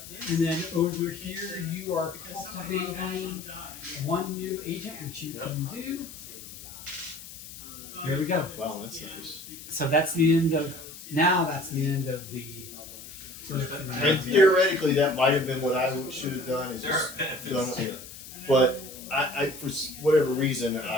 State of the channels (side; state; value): left; noise; hiss, 14 dB below the sound